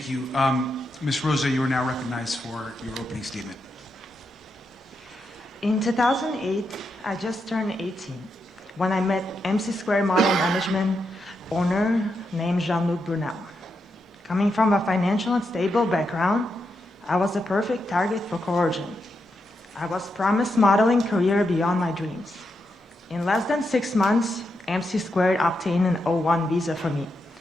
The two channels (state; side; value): normal; both; correlation 0.84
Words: you. Ms. Rosa, you are now recognized for your opening statement. In 2008, I just turned 18 when I met MC Square Model Management owner named Jean-Luc Brunel. Coming from a financial and stable background, I was a perfect target for coercion. I was promised modeling career beyond my dreams. In less than 6 months, MC Squared obtained an O1 visa for me.